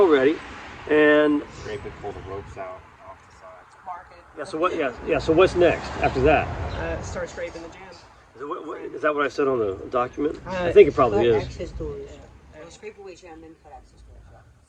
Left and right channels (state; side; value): identical; both; correlation 1.00